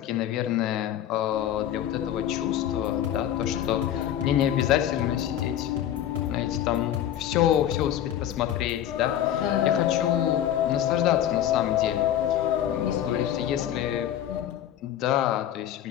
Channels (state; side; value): quieter; right; 11.1 dB